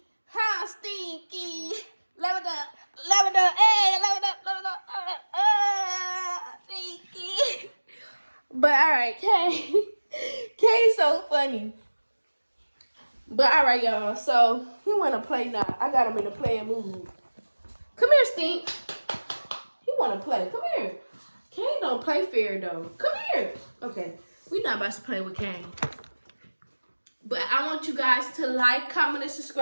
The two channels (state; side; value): inverted; both; correlation -1.00